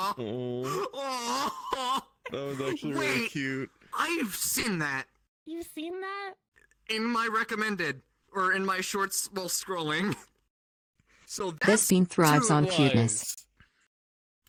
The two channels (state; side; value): identical; both; correlation 1.00